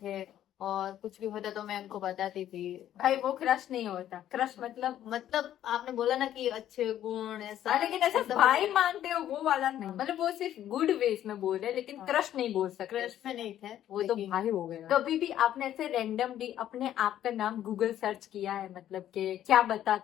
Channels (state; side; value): quieter; right; 11.6 dB